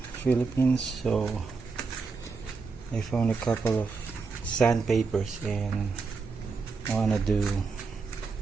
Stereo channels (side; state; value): left; quieter; 4.6 dB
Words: Philippines, so I found a couple of sandpapers and I wanna do